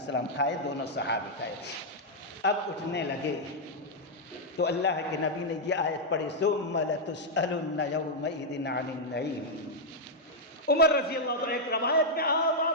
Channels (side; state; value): both; normal; correlation -0.04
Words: کھائے، دونوں صحابی کھائے۔ اب اٹھنے لگے تو اللہ کے نبی نے یہ آیت پڑھی ثم لتسألن یومئذ عن النعیم۔ عمر رضی اللہ عنہ ایک روایت میں